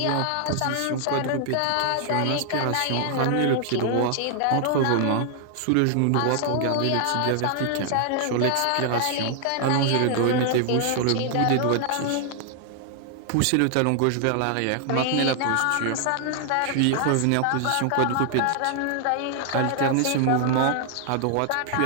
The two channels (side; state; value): both; different; correlation 0.00